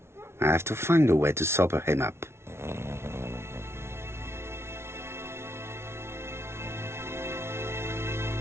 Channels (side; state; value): left; late; 0.12 ms